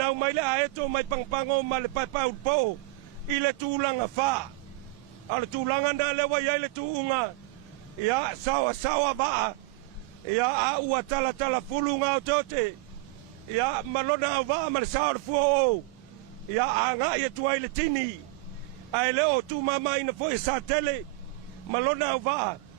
mai le aeto mai pangpango ma le paipau po I le tulanga fa a le tulanga na le wa ia le tuunga ia sawa ba ia a ua tala fulunga o tote ia malona ava ma le sao le fua o ia anga ia tuai le tini ai leo tu mama ina foi sa tele malona ava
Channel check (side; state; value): left; quieter; 20.5 dB